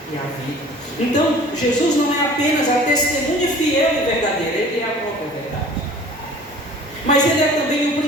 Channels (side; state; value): both; normal; correlation 0.47